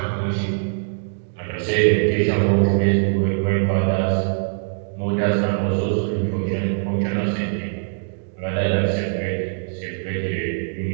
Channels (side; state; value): left; silent; digital silence